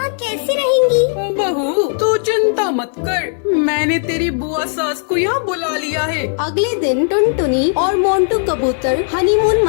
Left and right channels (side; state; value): right; silent; digital silence